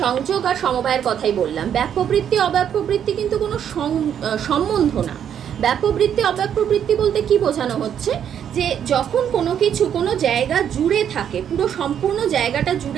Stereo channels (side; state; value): left; quieter; 9.0 dB